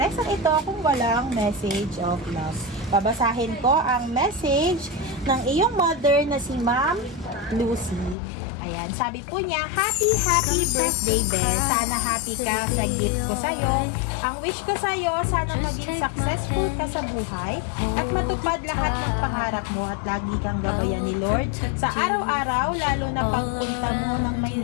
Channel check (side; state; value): right; drops out; at 8.2 s